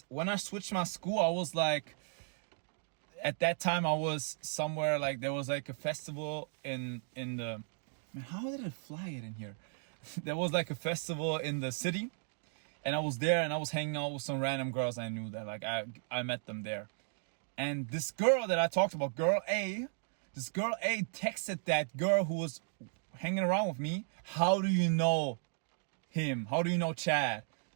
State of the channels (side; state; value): left; silent; digital silence